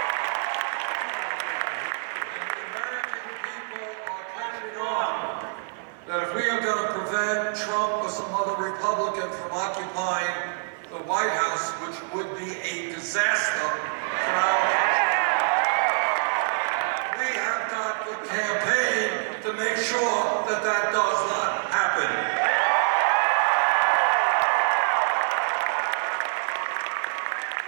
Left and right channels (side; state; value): left; silent; 56 dB below the other